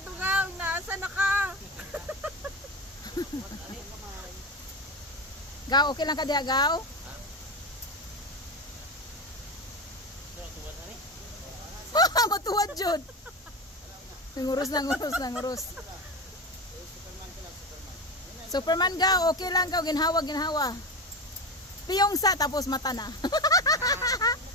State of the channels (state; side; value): normal; both; correlation 0.22